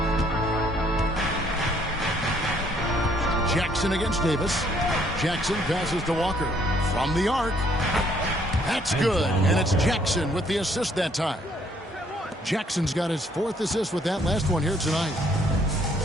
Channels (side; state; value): both; normal; correlation 0.65